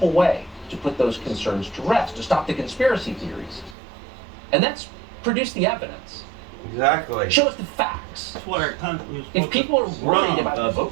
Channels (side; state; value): left; drops out; at 3.8 s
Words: way to put those concerns to rest, to stop the conspiracy theories. And that's produce the evidence. Exactly. Show us the facts. That's what our country is If supposed people are to worried run about the of.